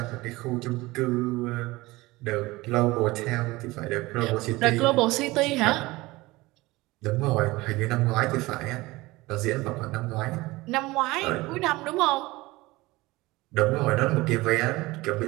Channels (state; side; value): quieter; left; 20.6 dB